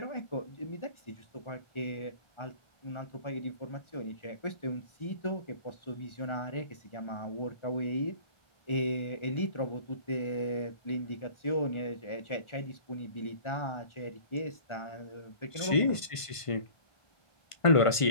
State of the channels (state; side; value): late; right; 1.5 ms